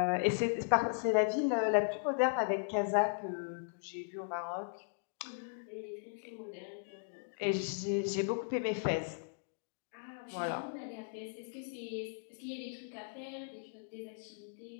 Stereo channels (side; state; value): right; silent; digital silence